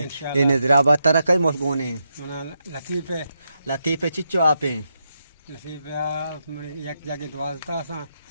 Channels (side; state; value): both; inverted; correlation -0.83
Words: ये निजराबाद तरह कई मुल्कों लतीफ़े चिच्चो आपे एक जगह द्वाजता सा